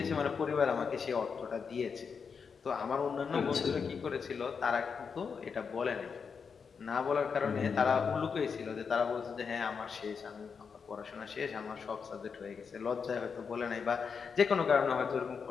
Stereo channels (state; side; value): quieter; right; 5.9 dB